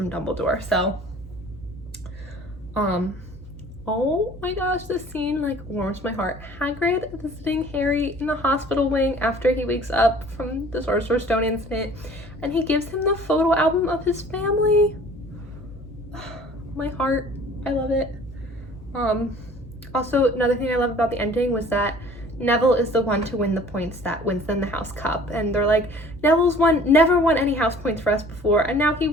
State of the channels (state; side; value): normal; both; correlation 0.50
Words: Dumbledore. So, Oh my gosh, this scene like warms my heart. Hagrid visiting Harry in the hospital wing after he wakes up from the Sorcerer's Stone incident, and he gives him the photo album of his family. My heart, I love it. Also, another thing I love about the ending was that Neville is the one to win the points that wins them the house cup, and they're like, Neville's never won any house points for us before, and now he